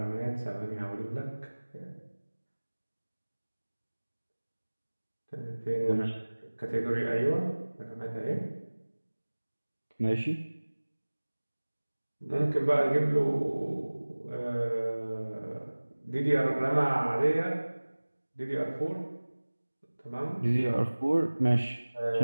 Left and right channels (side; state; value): both; inverted; correlation -1.00